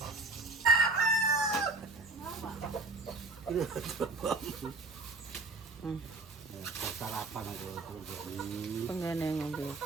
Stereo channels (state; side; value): quieter; left; 3.4 dB